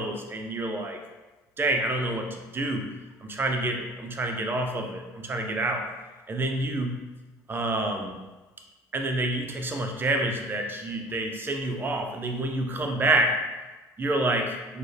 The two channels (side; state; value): both; normal; correlation 0.46